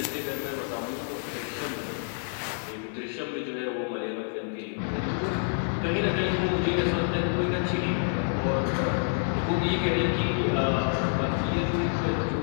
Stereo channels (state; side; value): silent; right; digital silence